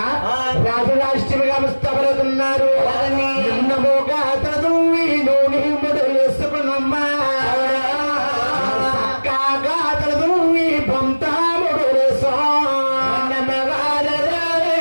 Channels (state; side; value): inverted; both; correlation -1.00